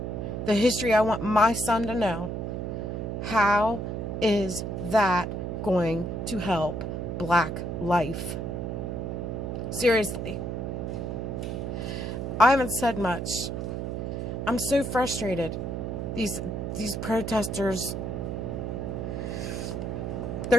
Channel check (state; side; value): noise; right; hum, 3 dB below the sound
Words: the history I want my son to know, how is that going to help Black life? Seriously. I haven't said much. I'm so frustrated. These protesters.